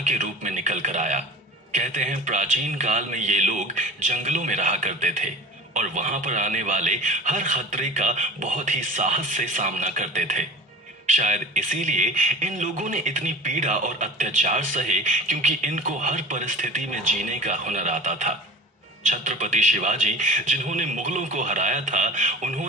के रूप में निकल कर आया। कहते हैं प्राचीन काल में ये लोग जंगलों में रहा करते थे और वहां पर आने वाले हर खतरे का बहुत ही साहस से सामना करते थे। शायद इसीलिए इन लोगों ने इतनी पीड़ा और अत्याचार सहे, क्योंकि इनको हर परिस्थिति में जीने का हुनर आता था। छत्रपति शिवाजी, जिन्होंने मुगलों को हराया था,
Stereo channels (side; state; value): both; normal; correlation 0.38